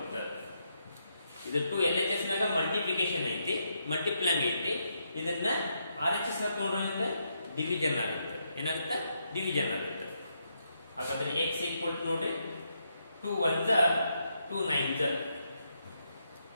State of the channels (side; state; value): both; inverted; correlation -0.79